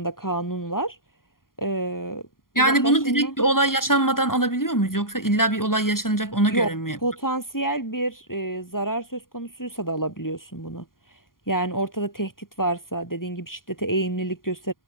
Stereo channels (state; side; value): late; right; 0.91 ms